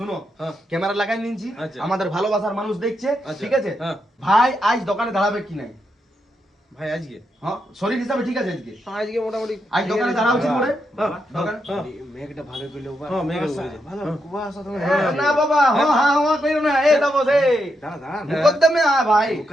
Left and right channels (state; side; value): normal; both; correlation 0.82